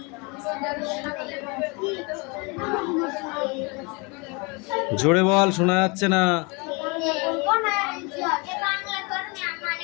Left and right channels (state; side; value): quieter; right; 29.6 dB